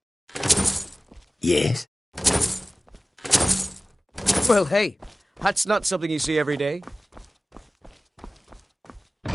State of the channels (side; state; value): both; normal; correlation 0.97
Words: Yes? Well, hey, that's not something you see every day.